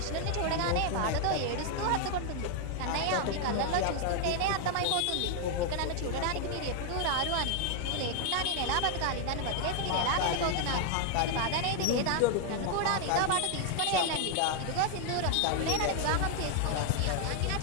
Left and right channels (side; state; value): both; different; correlation 0.00